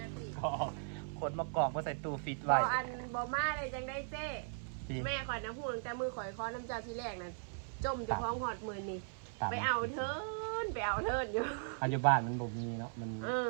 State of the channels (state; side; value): silent; left; 52 dB below the other